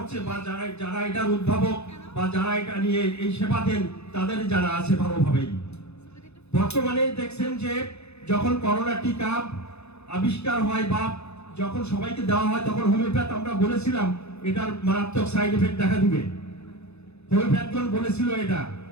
বা যারা এটার উদ্ভাবক বা যারা এটা নিয়ে এই সেবা দেন তাদের জানা আছে ভালোভাবেই। বর্তমানে দেখছেন যে যখন করোনা টিকা আবিষ্কার হয় বা যখন সবাইকে দেওয়া হয়, তখন হোমিওপ্যাথ আমরা বলেছিলাম এটার মারাত্মক সাইড এফেক্ট দেখা দিবে, হোমিওপ্যাথগণ বলেছিল এটা,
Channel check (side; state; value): right; late; 0.80 ms